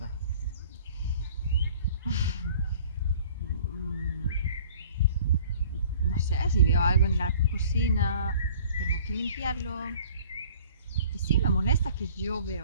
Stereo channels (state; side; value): inverted; both; correlation -0.50